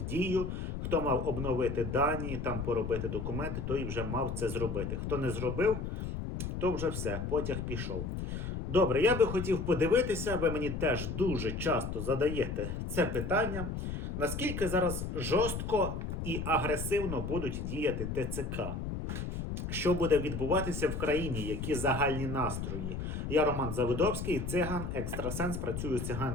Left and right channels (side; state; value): left; noise; rumble, 4 dB below the sound